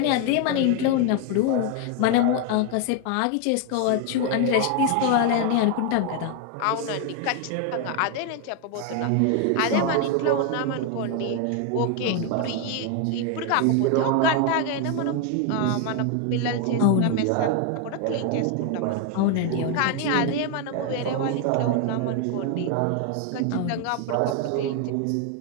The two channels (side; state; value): both; different; correlation 0.01